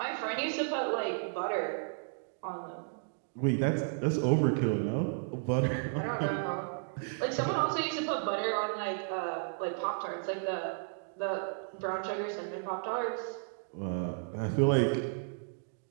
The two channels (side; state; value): left; silent; digital silence